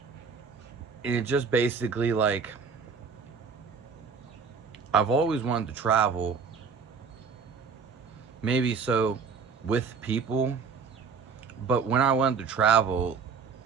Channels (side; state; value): left; quieter; 5.6 dB